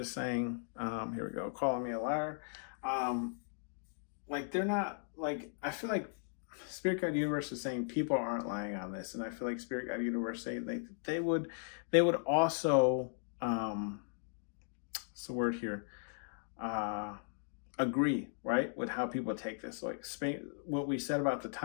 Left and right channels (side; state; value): right; silent; digital silence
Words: saying, here we go, calling me a liar. Like they're not, like, I feel like Spirit Guide Universe is saying people aren't lying on this, and I feel like Spirit Guide Universe saying they would also, what's the word here? Agree, right, with how people take this. Like what we said about the